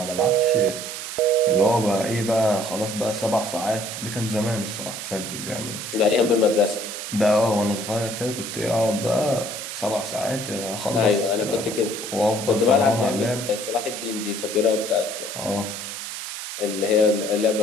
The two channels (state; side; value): noise; right; hiss, 7 dB below the sound